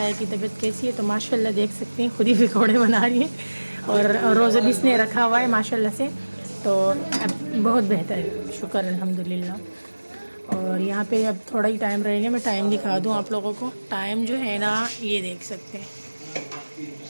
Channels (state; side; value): inverted; both; correlation -1.00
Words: की तबीयत कैसी है, तो माशाल्लाह देख सकते हैं खुद ही पकोड़े बना रही है। और रोज़ा भी इसने रखा हुआ है माशाल्लाह से, तो अब बहुत बेहतर है, शुक्र अल्हम्दुलिल्लाह। और यहाँ पे अब थोड़ा ही टाइम रहेगा, मैं टाइम दिखा दूँ आप लोगों को। टाइम जो है ना ये देख सकते हैं